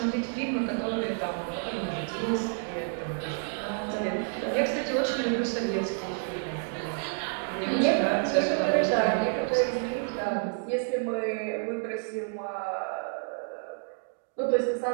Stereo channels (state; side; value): silent; left; 58 dB below the other